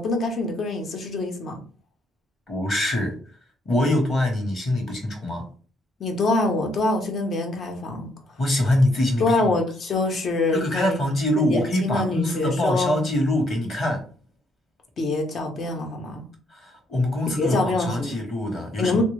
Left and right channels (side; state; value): both; normal; correlation 0.72